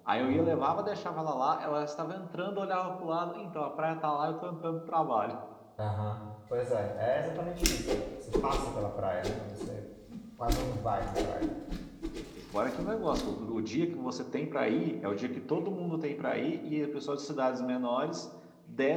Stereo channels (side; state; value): both; identical; correlation 1.00